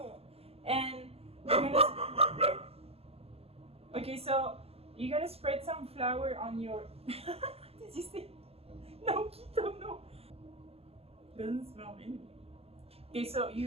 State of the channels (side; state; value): left; late; 0.29 ms